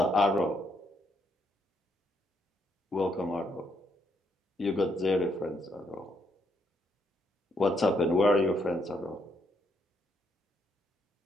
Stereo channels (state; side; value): normal; both; correlation 0.75